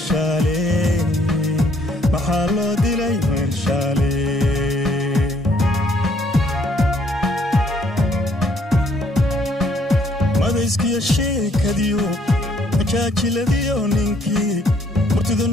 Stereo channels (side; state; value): both; normal; correlation 0.66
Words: maxaa loo dilay marshaale iskiya sheekadiyo majaajiladiyo ninkii murtida